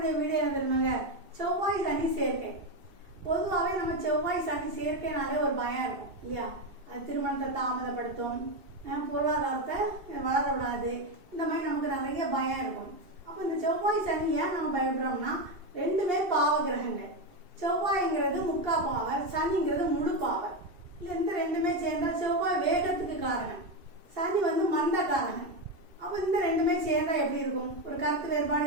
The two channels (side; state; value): left; late; 2.7 ms